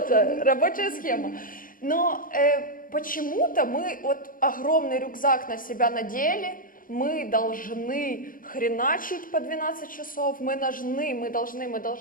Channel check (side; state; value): right; late; 0.40 ms